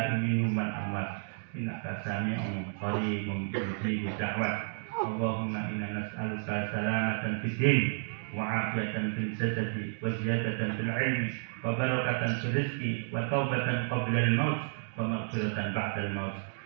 minhum wal amwat innaka sami'un qaribun mujibud da'wat. Allahumma inna nas'aluka salamatan fid din wa 'afiyatan fil jasadi wa ziyadatan fil 'ilmi wa barakatan fil rizqi wa taubatan qabla al maut wa maghfiratan ba'da al maut.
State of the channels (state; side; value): silent; left; digital silence